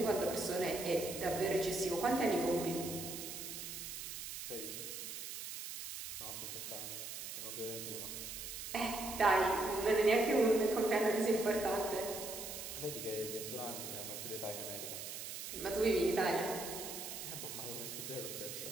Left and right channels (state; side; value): noise; right; hiss, 7 dB below the sound